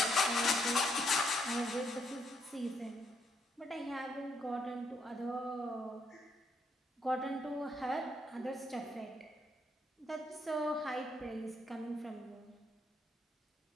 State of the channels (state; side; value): normal; both; correlation 0.74